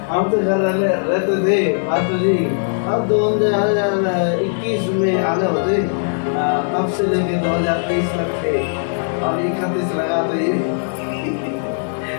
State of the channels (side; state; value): right; silent; digital silence